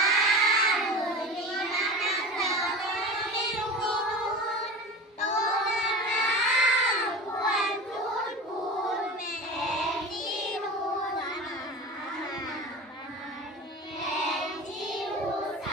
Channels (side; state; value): both; normal; correlation 0.31